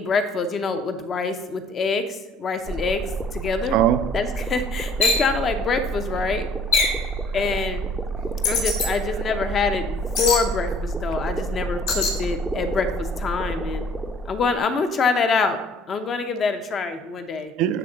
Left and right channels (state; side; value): normal; both; correlation 0.56